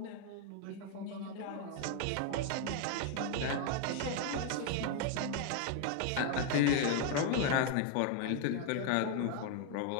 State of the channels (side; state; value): both; different; correlation 0.00